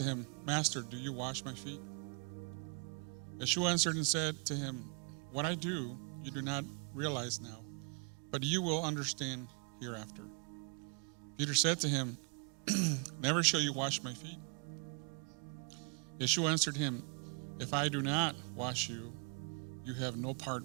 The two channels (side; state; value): left; quieter; 39.3 dB